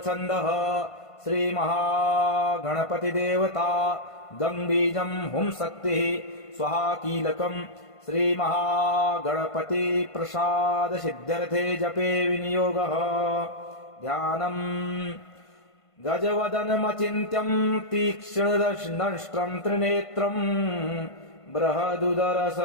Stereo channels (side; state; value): right; late; 1.5 ms